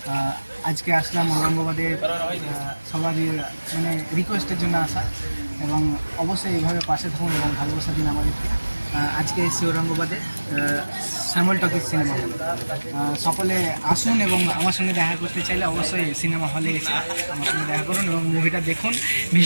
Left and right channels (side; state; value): both; inverted; correlation -1.00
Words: আজকে আসলাম ঔরঙ্গাবাদের সবারই মানে রিকোয়েস্টের জন্য আসা, এবং অবশ্যই এইভাবে পাশে থাকুন এবং ভালোবাসা দিন আমাদেরকে। আজকে এসেছি ঔরঙ্গাবাদে শ্যামল টকিজ সিনেমা হল। সকলে আসুন এবং আমার সঙ্গে দেখা করতে চাইলে অবশ্যই সিনেমা হলে এসে আমার সঙ্গে দেখা করুন এবং মুভিটা দেখুন।